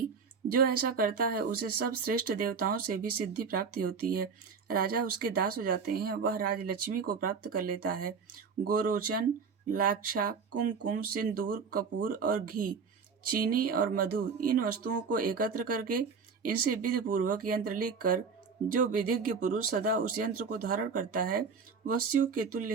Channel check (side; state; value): left; quieter; 5.6 dB